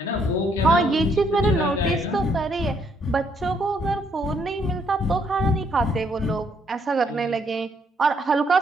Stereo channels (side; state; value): both; normal; correlation 0.70